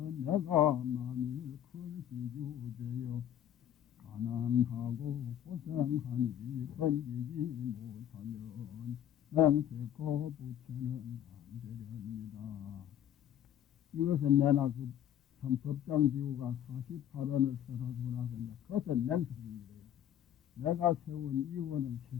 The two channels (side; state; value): right; quieter; 10.6 dB